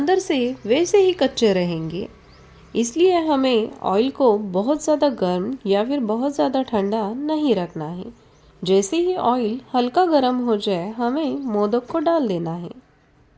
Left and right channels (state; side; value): identical; both; correlation 1.00